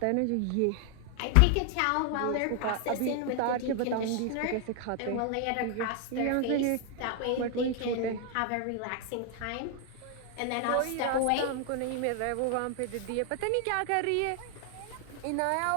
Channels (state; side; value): different; both; correlation 0.00